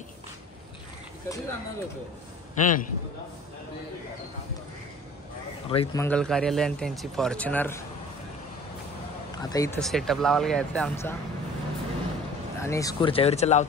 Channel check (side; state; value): both; normal; correlation 0.47